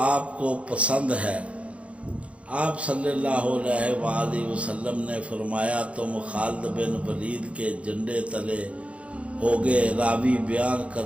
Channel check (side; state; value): left; late; 0.062 ms